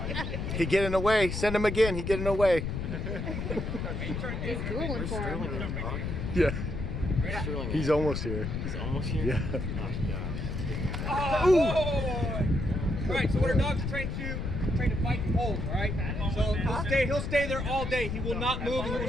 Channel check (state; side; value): noise; left; rumble, 3 dB below the sound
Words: He getting away. Send him again. He getting away. He's drooling for him. Yeah. Sterling. He's almost here. He's almost here. Yeah. Oh gosh. Oh, boy. All right, so what our dogs are trained to fight and hold, all right? So he'll stay there all day. He will not move, he will